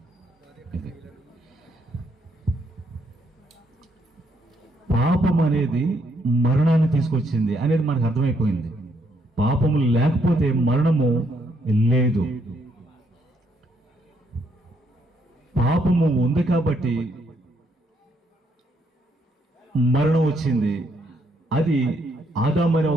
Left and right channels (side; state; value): both; normal; correlation 0.73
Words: పాపం అనేది మరణాన్ని తీసుకొచ్చింది అనేది మనకు అర్థమైపోయింది. పాపము లేకపోతే మరణము లేదు. పాపము ఉంది కాబట్టి మరణం వచ్చింది. అది ఆదాము అనే